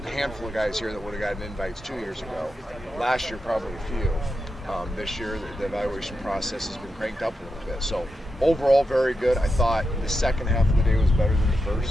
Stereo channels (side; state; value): both; normal; correlation 0.87